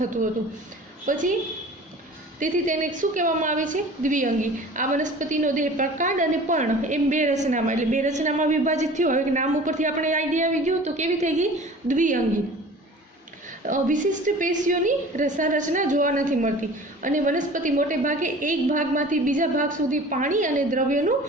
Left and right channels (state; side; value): normal; both; correlation 0.43